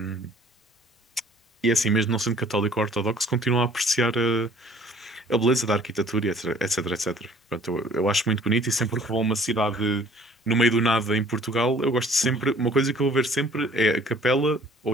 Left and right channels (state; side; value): normal; both; correlation 0.54